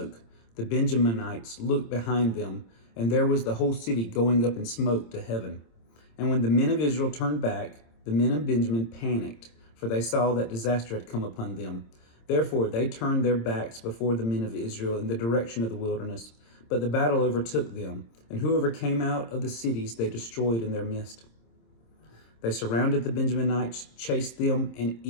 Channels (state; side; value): late; right; 26 ms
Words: the Benjaminites looked behind them, and there was the whole city going up in smoke to heaven. And when the men of Israel turned back, the men of Benjamin panicked, for they saw that disaster had come upon them. Therefore they turned their backs before the men of Israel in the direction of the wilderness. But the battle overtook them, and whoever came out of the cities they destroyed in their midst. They surrounded the Benjaminites, chased them, and